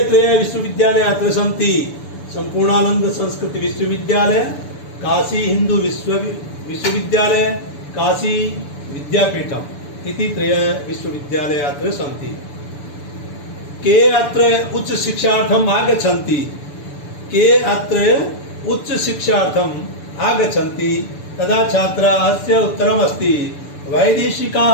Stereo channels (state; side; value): late; right; 6.9 ms